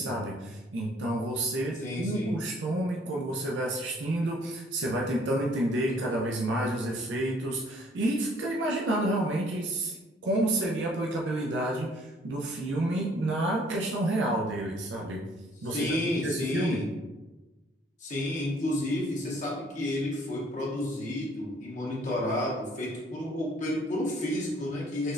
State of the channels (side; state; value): both; normal; correlation 0.60